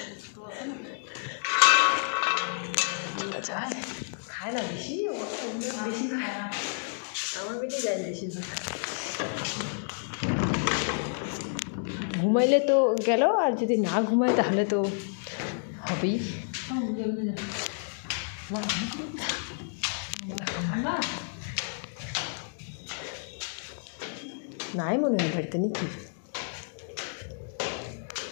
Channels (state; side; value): silent; right; digital silence